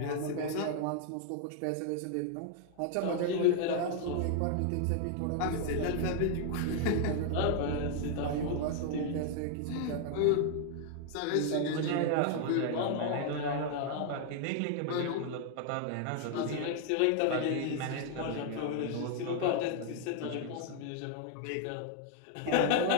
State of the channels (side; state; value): both; different; correlation 0.00